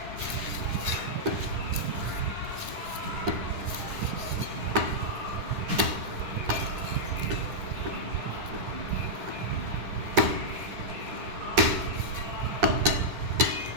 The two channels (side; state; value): left; late; 10 ms